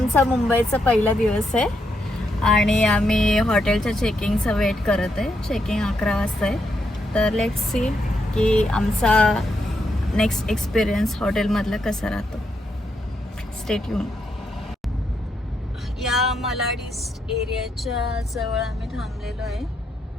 मुंबईचा पहिला दिवस आहे आणि आम्ही हॉटेलच्या चेकिंगचा वेट करत आहे. चेकिंग 11 वाजता आहे. तर लेट्स सी की आमचा नेक्स्ट एक्सपिरियन्स हॉटेलमधला कसा राहतो. Stay tune. या मलाड ईस्ट एरियाच्या जवळ आम्ही थांबलेलो आहे.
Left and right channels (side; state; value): both; normal; correlation 0.80